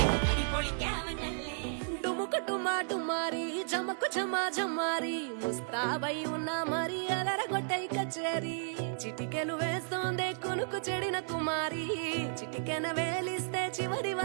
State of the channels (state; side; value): silent; left; 55 dB below the other